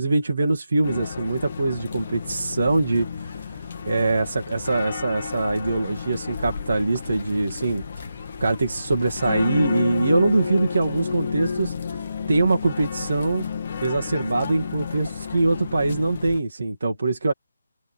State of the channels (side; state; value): both; inverted; correlation -0.88